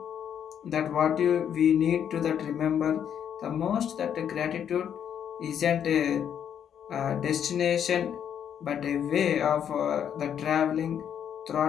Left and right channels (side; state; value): right; quieter; 8.9 dB